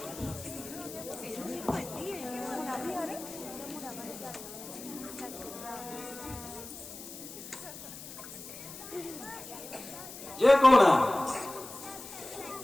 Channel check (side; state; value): left; noise; hiss, 13 dB below the sound